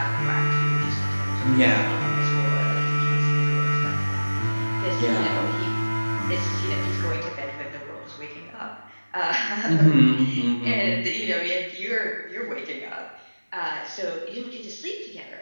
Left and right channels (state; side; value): inverted; both; correlation -1.00